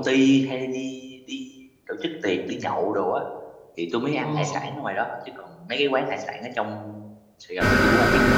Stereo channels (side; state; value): both; identical; correlation 1.00